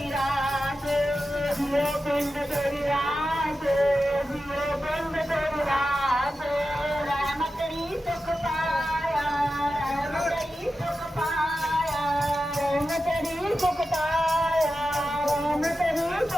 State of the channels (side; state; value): both; normal; correlation 0.92